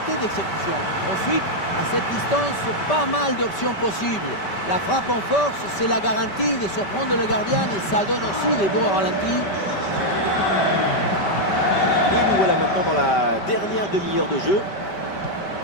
d'exécution. Ensuite, à cette distance, pas mal d'options possibles. La frappe en force, c'est la garantie de surprendre le gardien et ça donne aussi des beaux ralentis. Et nous voilà maintenant dans la dernière demi-heure de jeu.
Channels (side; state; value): right; late; 5.1 ms